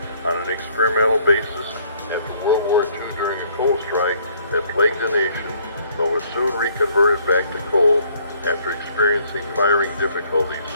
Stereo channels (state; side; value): inverted; both; correlation -0.62